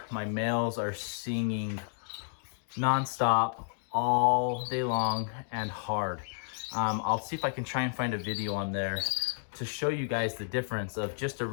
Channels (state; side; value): silent; right; digital silence